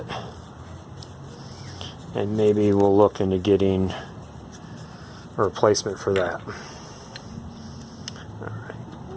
and maybe we'll look into getting a replacement for that.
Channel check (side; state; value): both; identical; correlation 1.00